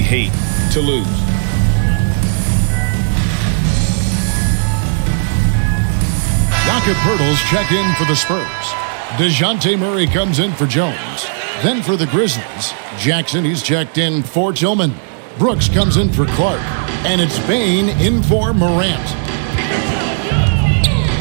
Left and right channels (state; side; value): silent; left; digital silence